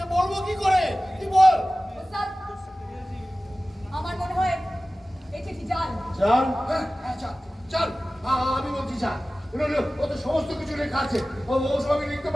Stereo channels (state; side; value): normal; both; correlation 0.97